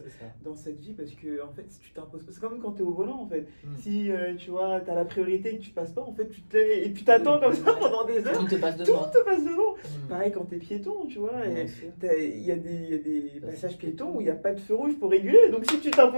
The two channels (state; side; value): inverted; both; correlation -1.00